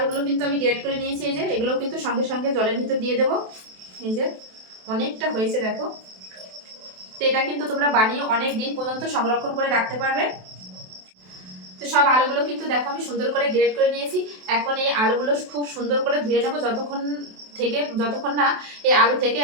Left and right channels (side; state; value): left; late; 27 ms